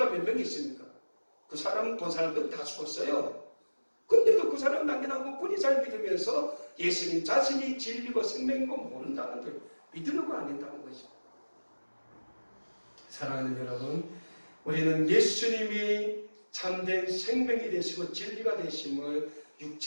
몇 명 있습니까? 그 사람 본 사람들은 다 죽었어요. 근데도 그 사람 남겨놓고 그리 잘 믿으면서 예수님 자신이 진리고 생명이고 모른다는 걸 믿으려고 안 된다는 거죠. 사랑하는 여러분, 우리는 예수님이 참된 생명이 되시고 진리가 되심을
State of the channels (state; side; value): inverted; both; correlation -1.00